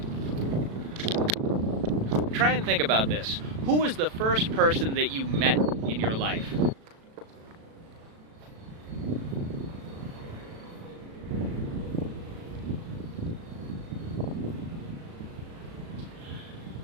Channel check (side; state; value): left; late; 36 ms